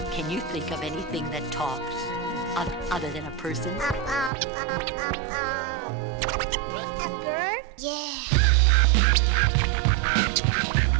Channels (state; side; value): drops out; left; at 4.3 s